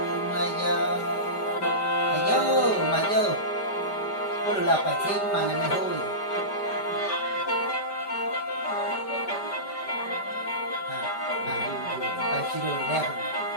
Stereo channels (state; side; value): late; right; 5.1 ms